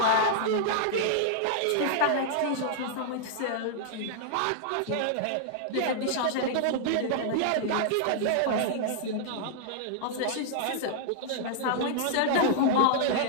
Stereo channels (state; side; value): different; both; correlation -0.01